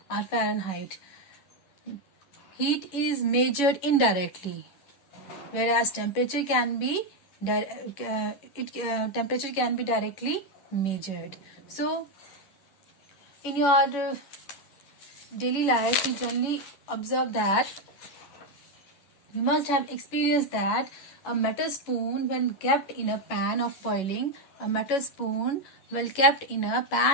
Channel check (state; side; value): late; right; 11 ms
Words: or Fahrenheit. Heat is measured indirectly, whereas temperature can be directly measured. So, in your daily life, you generally observe that you must have experienced that a metal spoon, when kept in a pan of boiling, water,